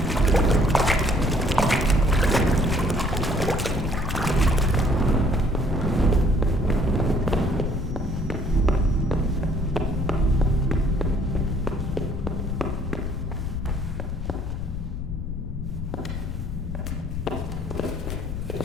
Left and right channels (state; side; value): noise; left; rumble, 5 dB below the sound